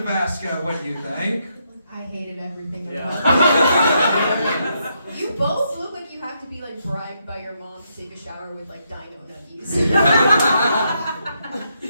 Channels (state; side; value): inverted; both; correlation -0.78